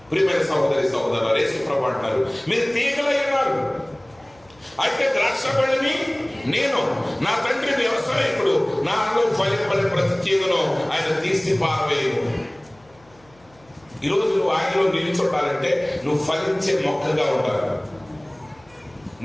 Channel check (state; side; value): noise; left; hum, 30 dB below the sound